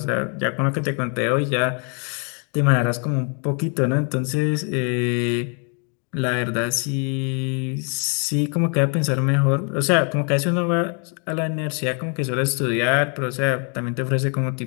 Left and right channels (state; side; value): quieter; right; 39.1 dB